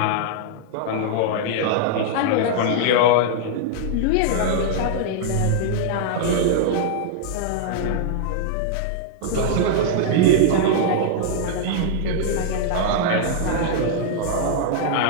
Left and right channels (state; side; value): different; both; correlation -0.01